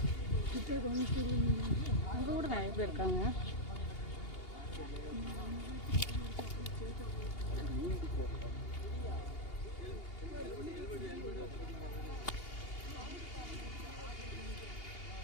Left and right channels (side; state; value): right; late; 2.8 ms